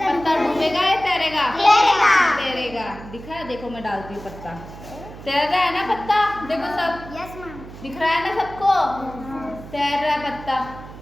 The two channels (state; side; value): noise; right; hum, 15 dB below the sound